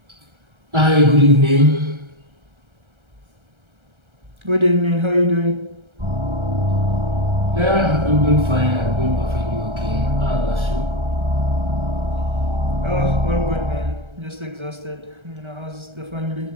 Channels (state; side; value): late; left; 1.3 ms